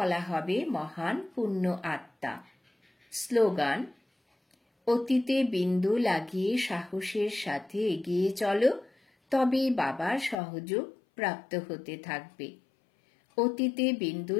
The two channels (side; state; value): right; drops out; at 10.4 s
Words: হবে মহান পুণ্য আত্মা। স্লোগান, অতীতে বিন্দু লাগিয়ে সাহসের সাথে এগিয়ে চলো, তবেই বাবার সহযোগ প্রাপ্ত হতে থাকবে। অতীতে বিন্দু